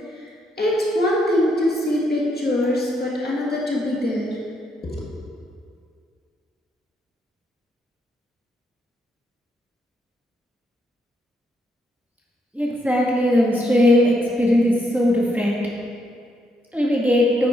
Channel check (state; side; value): normal; both; correlation 0.76